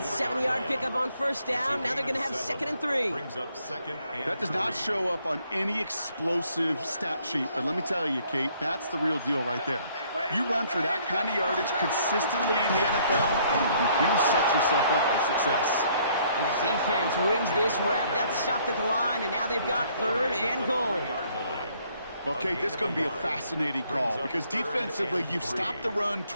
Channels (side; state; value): both; inverted; correlation -0.64